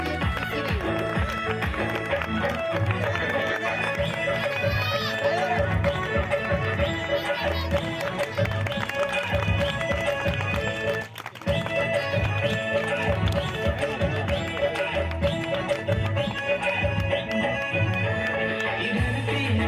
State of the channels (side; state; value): both; identical; correlation 1.00